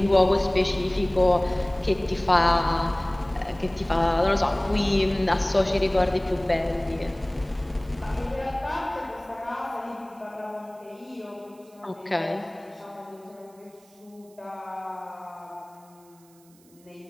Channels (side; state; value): right; noise; hiss, 29 dB below the sound